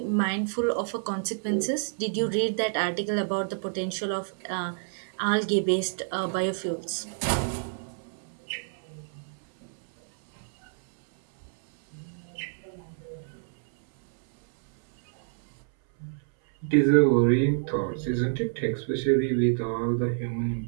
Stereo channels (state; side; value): silent; left; 59 dB below the other